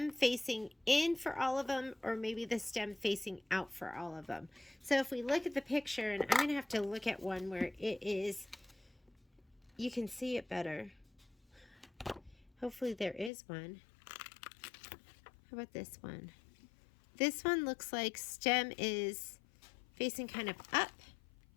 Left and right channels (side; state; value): right; drops out; at 13.3 s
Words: facing in for all of them, or maybe the stem facing out for all of them. So if we look at the picture, and I'm going to have to look at one where it is, you can see it better. Hopefully there is one. How about this one? This one looks like stem is facing kind of up.